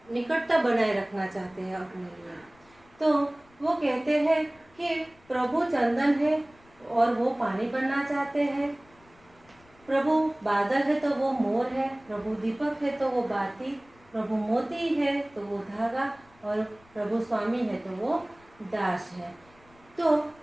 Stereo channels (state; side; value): noise; left; rumble, 29 dB below the sound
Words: बनाए रखना चाहते हैं अपने लिए। तो वो कहते हैं कि प्रभु चंदन है और वो पानी बनना चाहते हैं। प्रभु बादल है तो वो मोर है, प्रभु दीपक है तो वो बाती, प्रभु मोती है तो वो धागा और प्रभु स्वामी है तो वो दास है। तो